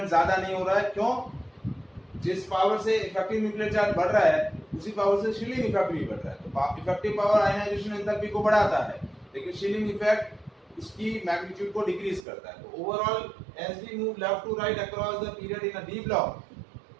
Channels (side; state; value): left; drops out; at 12.2 s